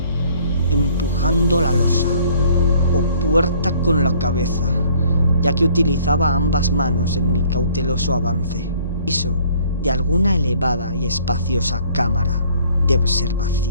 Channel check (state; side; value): inverted; both; correlation -0.58